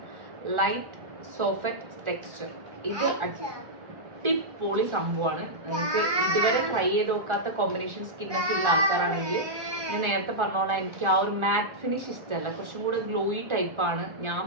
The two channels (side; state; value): left; late; 1.4 ms